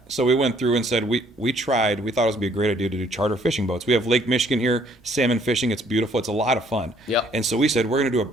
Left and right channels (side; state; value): both; normal; correlation 0.63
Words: So we went through and said we thought it would be a great idea to do charter fishing boats. We have Lake Michigan here, salmon fishing. It's beautiful. It's a lot of fun. Yep. And so we said we're going to do a